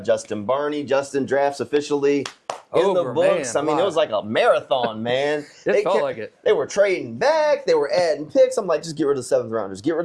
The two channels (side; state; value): both; identical; correlation 1.00